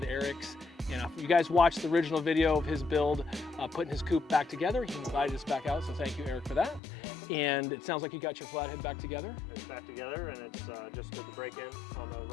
Erik's. And if you guys watched the original video of his build, putting his coupe back together, he invited us back out, so thank you, Erik, for that. You're welcome. And it sounds like you got your Flathead back together. It's back together, and it's just did the break-in on the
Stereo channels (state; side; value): drops out; right; at 6.8 s